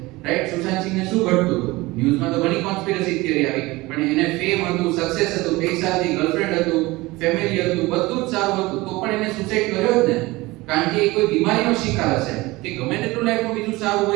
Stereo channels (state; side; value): quieter; left; 21.0 dB